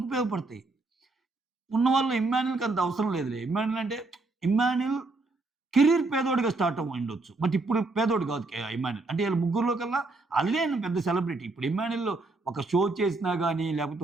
ఉపయోగపడతాయి. ఉన్నవాళ్ళు ఇమ్మాన్యుల్కి అంత అవసరం లేదులే. ఇమ్మాన్యుల్ అంటే ఇమ్మాన్యుల్ కెరీర్ పేదోడిగా స్టార్ట్ ఉండొచ్చు, బట్ ఇప్పుడు పేదోడు కాదు ఇమ్మాన్యుల్. అంటే వీళ్ళ ముగ్గురులో కల్లా అల్లే పెద్ద సెలబ్రిటీ. ఇప్పుడు ఇమ్మాన్యుల్ ఒక షో చేసినా కానీ లేకపోతే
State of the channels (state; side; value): quieter; left; 3.3 dB